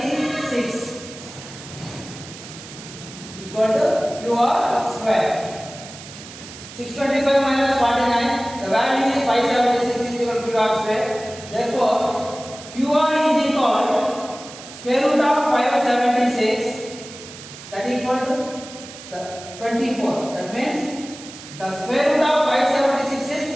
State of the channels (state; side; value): noise; right; hiss, 15 dB below the sound